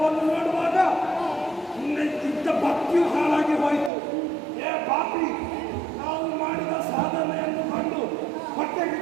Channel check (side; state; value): left; drops out; at 3.9 s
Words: ನೋಡುವಾಗ ನಿನ್ನ ಭಕ್ತಿಯು ಹಾಳಾಗಿ ಹೋಯಿತು. ಪಾಪಿ, ನಾವು ಮಾಡಿದ ಸಾಧನೆಯನ್ನು ಕಂಡು